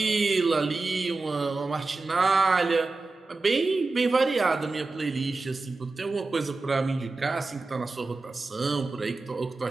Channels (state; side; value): quieter; left; 3.6 dB